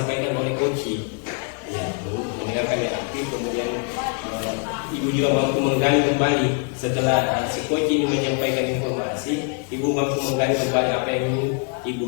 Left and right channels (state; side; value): quieter; right; 39.9 dB